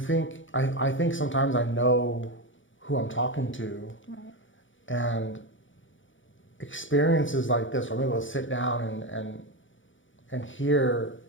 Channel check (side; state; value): right; late; 0.56 ms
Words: think sometimes I know who I'm talking to, and experiences like this where I'm able to sit down and hear